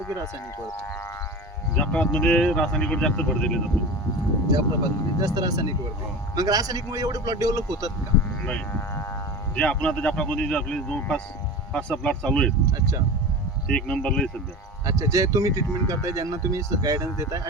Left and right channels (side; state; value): both; normal; correlation 0.31